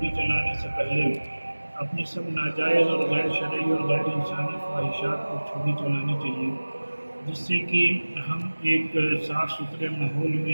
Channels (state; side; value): inverted; both; correlation -1.00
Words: چلانے سے پہلے اپنے سب ناجائز اور غیر شرعی اور غیر انسانی خواہشات پر چھری چلانی چاہیے، جس سے کہ ہم ایک صاف ستھرے ماحول میں